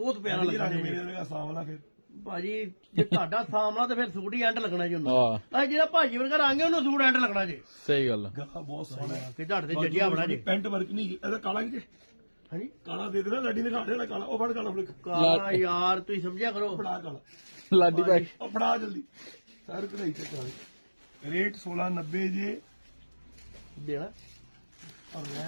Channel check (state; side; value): inverted; both; correlation -1.00